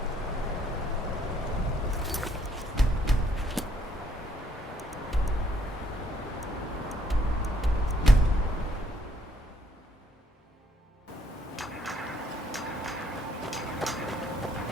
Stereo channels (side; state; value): both; normal; correlation 0.68